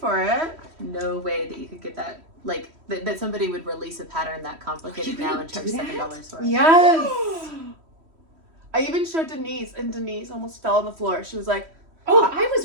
it. No way that you could get that, like, that somebody would release a pattern that complicated now and charge $7 for it. Yes. I even showed Denise, and Denise almost fell on the floor. She was like, Oh, I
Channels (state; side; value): late; left; 3.1 ms